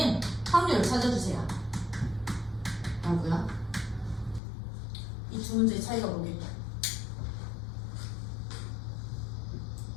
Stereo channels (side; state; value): right; drops out; at 4.4 s